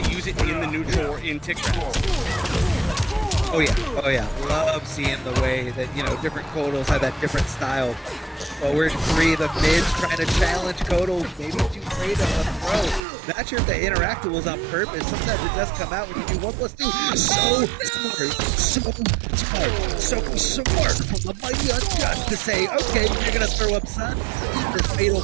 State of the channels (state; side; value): drops out; left; at 13.1 s